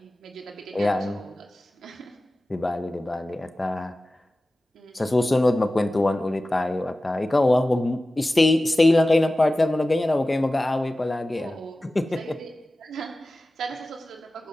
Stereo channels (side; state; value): both; normal; correlation 0.96